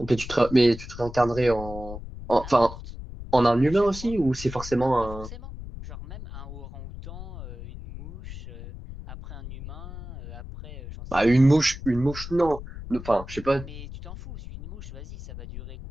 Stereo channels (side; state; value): left; noise; rumble, 11 dB below the sound